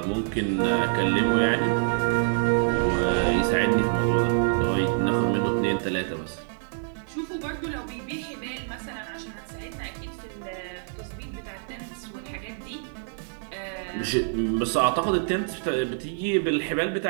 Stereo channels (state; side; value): silent; left; digital silence